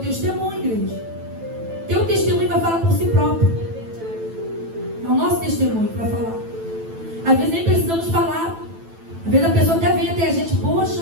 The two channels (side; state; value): left; late; 9.0 ms